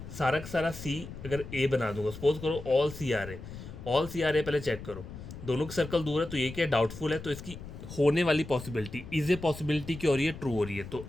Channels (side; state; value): left; noise; rumble, 12 dB below the sound